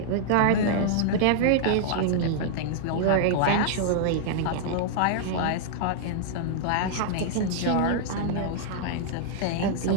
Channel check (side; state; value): both; different; correlation -0.01